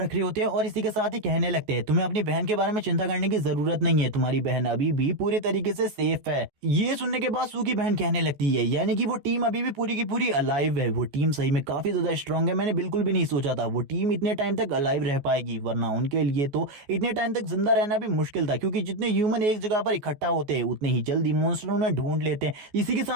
रहे होते हैं और इसी के साथ ही कहने लगते हैं तुम्हें अपनी बहन के बारे में चिंता करने की जरूरत नहीं है, तुम्हारी बहन अभी भी पूरी तरीके से सेफ है। ये सुनने के बाद सू की बहन कहने लगती है यानी कि वो टीम अभी भी पूरी की पूरी अलाइव है, वो टीम सही में काफी ज्यादा स्ट्रांग है। मैंने बिल्कुल भी नहीं सोचा था वो टीम इतने टाइम तक अलाइव रह पाएगी, वरना उनके लिए तो इतने टाइम तक जिंदा रहना भी मुश्किल था, क्योंकि जितने ह्यूमन एक जगह पर इकट्ठा होते हैं उतने ही जल्दी मॉन्स्टर उन्हें ढूंढ लेते हैं। इसी के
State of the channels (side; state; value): left; late; 14 ms